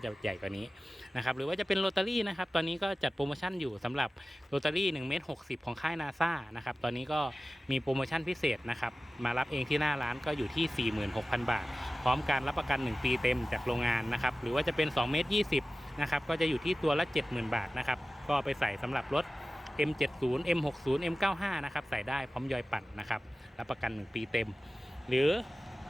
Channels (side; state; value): both; normal; correlation 0.95